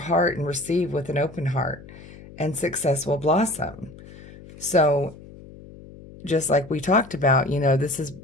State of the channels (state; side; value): noise; left; hum, 18 dB below the sound